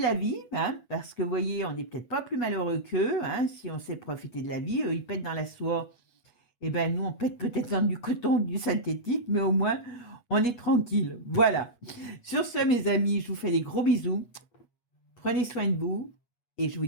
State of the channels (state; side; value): late; right; 8.4 ms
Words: vie, hein, parce que vous voyez, on n'est peut-être pas plus malheureux qu'eux, hein, si on sait profiter de la vie. Eux, ils pètent dans la soie. Eh ben, nous, on pète peut-être dans du coton, du synthétique, mais au moins, on est tranquille. Voilà. Sur ce, mes amis, je vous fais des gros bisous. Prenez soin de vous. Et je vous